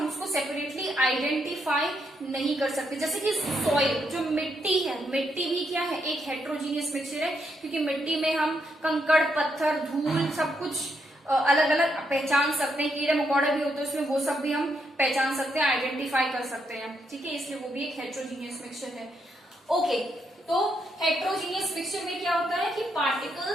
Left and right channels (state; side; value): normal; both; correlation 0.78